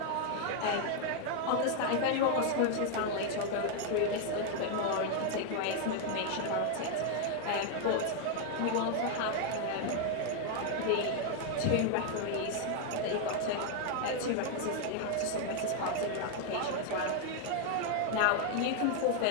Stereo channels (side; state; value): both; different; correlation 0.00